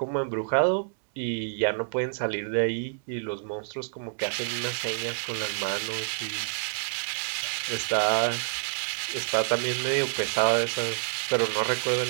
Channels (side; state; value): left; silent; digital silence